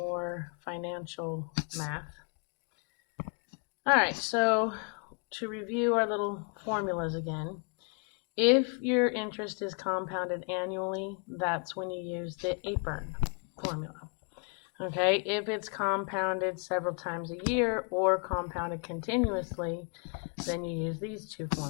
financial math. All right, so to review our little formulas again, if your interest is compounded annually, that's when you use the APERN formula. Okay, if it's compounded several times a year or compounded continuously, then you use these two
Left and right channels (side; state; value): right; quieter; 37.9 dB